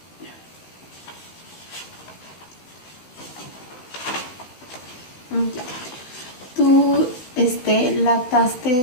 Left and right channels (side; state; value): right; late; 16 ms